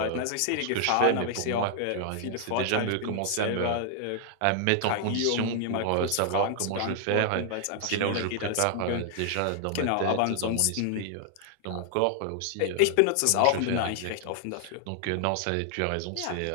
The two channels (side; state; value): both; different; correlation 0.00